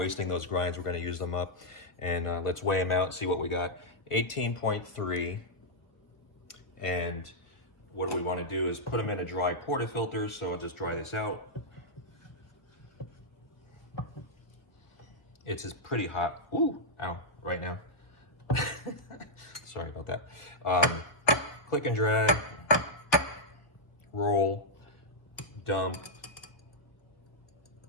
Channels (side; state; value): right; late; 1.4 ms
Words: those grinds. We're gonna use them up, and let's weigh them out and see what we got. 18.3, and what do we want to do is put them in a dry portafilter. So I'll just dry this out. It's pretty hot. Ooh, ow, right now. Sorry about that. Click and drag, roll, dump.